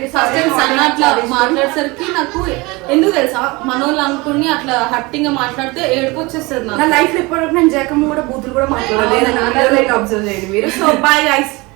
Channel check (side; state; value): left; quieter; 24.2 dB